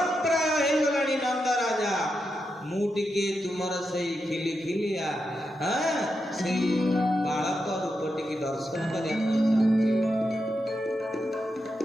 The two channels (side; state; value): both; normal; correlation 0.86